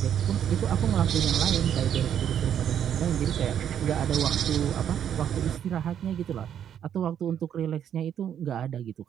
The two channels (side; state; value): left; quieter; 9.3 dB